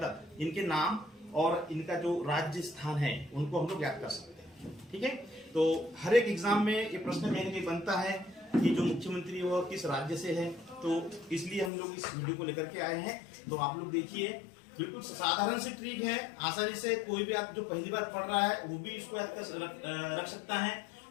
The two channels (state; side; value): drops out; right; at 11.7 s